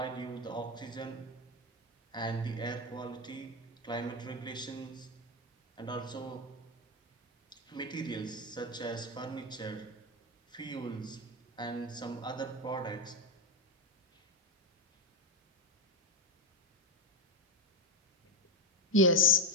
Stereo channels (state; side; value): normal; both; correlation 0.09